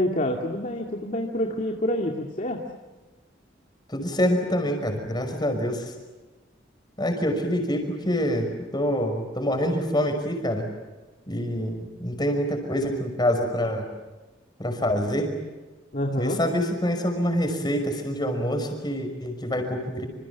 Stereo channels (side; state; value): both; normal; correlation 0.56